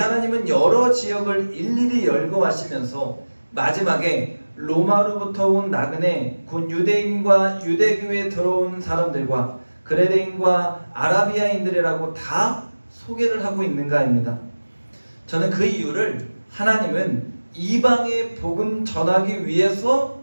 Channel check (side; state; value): both; inverted; correlation -1.00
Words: 여러 지역을 일일이 열거하시면서 마지막에 로마로부터 온 나그네 곧 유대인과 유대교에 들어온 사람들과 그레데인과 아라비아인들이라고 다 소개를 하고 있는가입니다. 저는 그 이유를 하나님은 이방의 복음 전하기